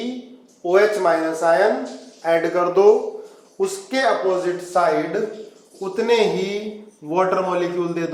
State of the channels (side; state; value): both; identical; correlation 1.00